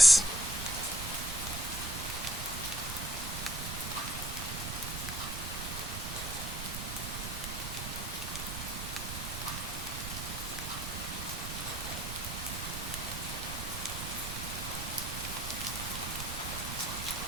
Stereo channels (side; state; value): right; noise; rumble, 6 dB below the sound